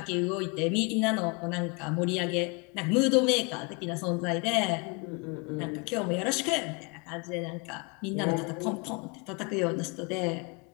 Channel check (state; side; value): quieter; right; 31.0 dB